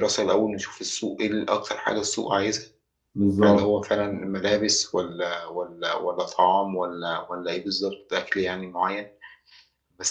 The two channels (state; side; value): identical; both; correlation 1.00